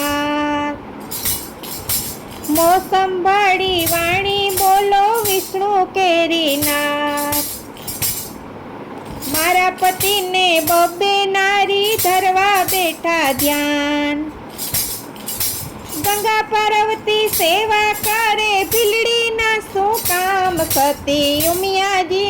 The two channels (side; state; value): both; identical; correlation 1.00